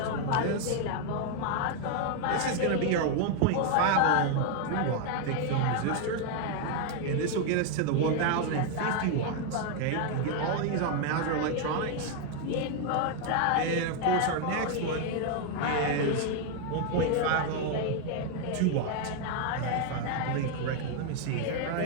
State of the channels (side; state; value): both; different; correlation 0.01